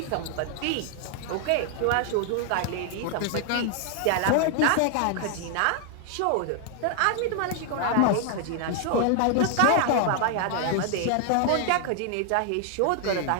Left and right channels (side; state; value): both; different; correlation 0.00